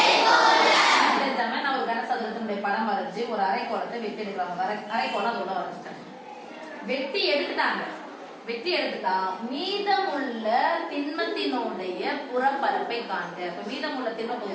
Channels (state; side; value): identical; both; correlation 1.00